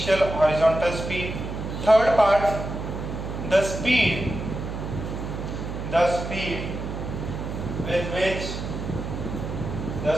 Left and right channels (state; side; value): noise; right; hum, 6 dB below the sound